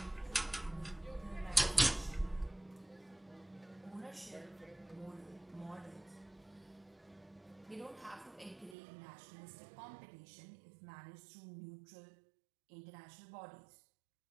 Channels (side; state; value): left; drops out; at 8.8 s